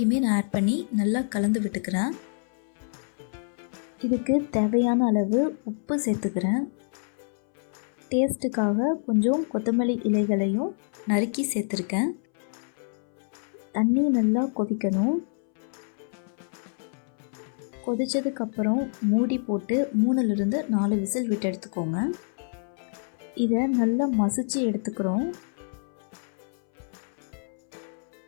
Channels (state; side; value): silent; right; 60 dB below the other